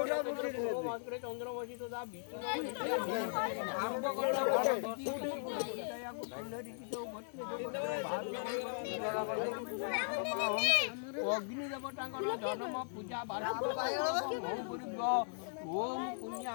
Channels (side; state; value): right; silent; digital silence